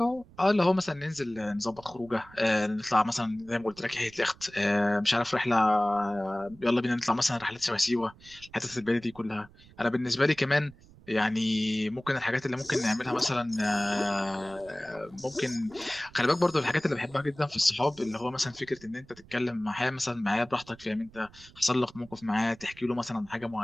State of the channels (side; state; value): right; noise; rumble, 23 dB below the sound